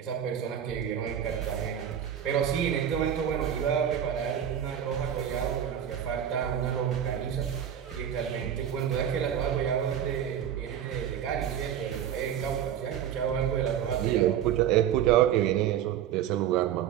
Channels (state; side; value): quieter; left; 9.7 dB